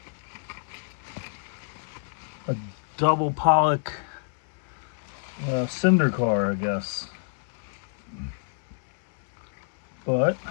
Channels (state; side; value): silent; right; digital silence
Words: pollock cinder car, I guess. But